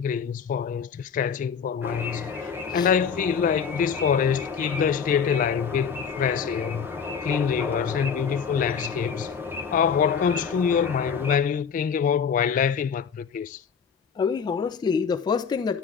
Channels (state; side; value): quieter; right; 6.6 dB